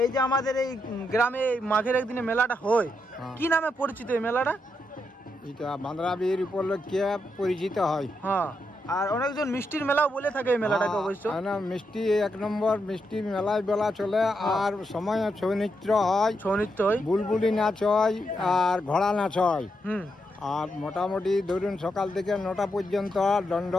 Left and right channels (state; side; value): normal; both; correlation 0.82